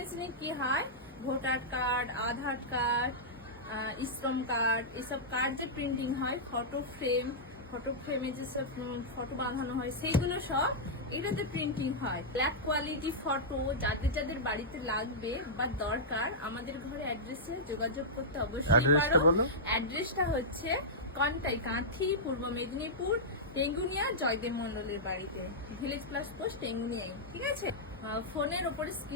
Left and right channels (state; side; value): normal; both; correlation -0.11